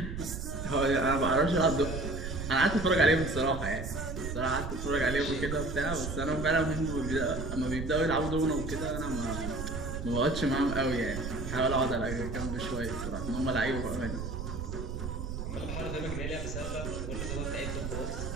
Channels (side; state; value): right; noise; rumble, 5 dB below the sound